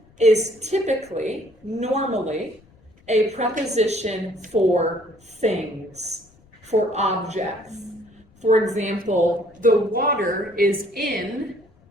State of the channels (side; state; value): left; noise; rumble, 29 dB below the sound